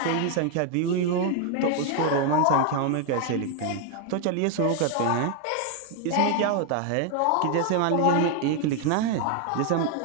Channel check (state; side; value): different; both; correlation 0.01